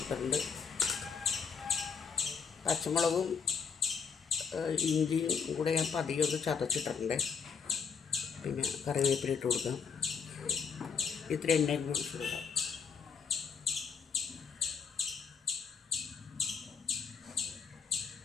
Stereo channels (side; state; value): right; quieter; 6.1 dB